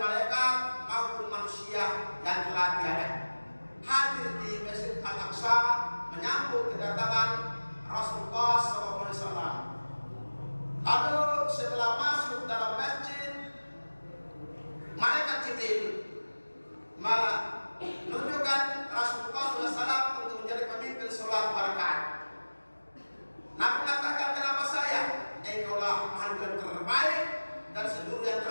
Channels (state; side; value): inverted; both; correlation -1.00